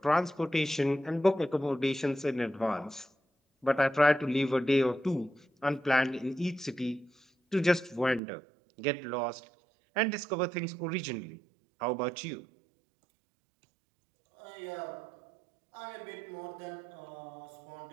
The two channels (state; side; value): drops out; left; at 8.2 s